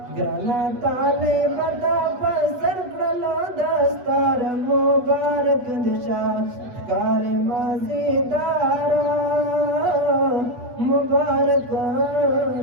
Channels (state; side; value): late; left; 8.2 ms